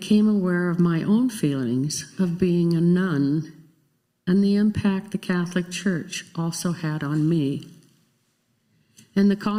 aware of my own feelings of being a nun and the impact the Catholic Church also had on me. In the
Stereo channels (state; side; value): identical; both; correlation 1.00